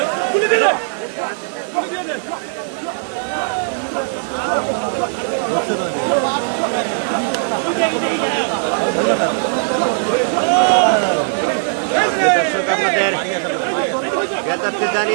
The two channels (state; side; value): silent; left; digital silence